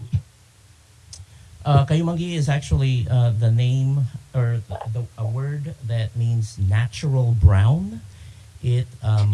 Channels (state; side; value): identical; both; correlation 1.00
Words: Kayumanggi is actually the name or a word that means natural brown. It's